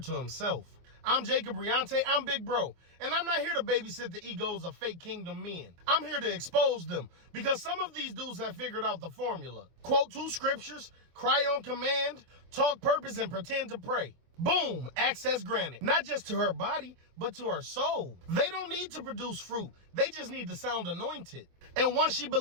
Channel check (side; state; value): left; late; 24 ms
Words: himself. I'm Jacob Riante, I'm Big Bro, and I'm not here to babysit the egos of fake kingdom men. I'm here to expose them, because some of these dudes have figured out the formula. Quote 2 scriptures, cry on command, talk purpose, and pretend to pray. Boom, access granted. Not just to her body, but to her soul. They don't need to produce fruit. They just need to sound anointed. And once she